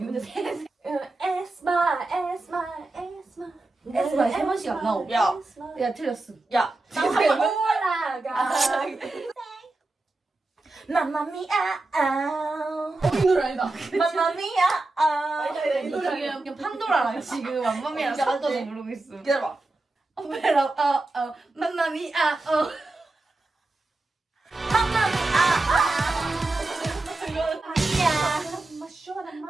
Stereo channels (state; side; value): quieter; left; 3.1 dB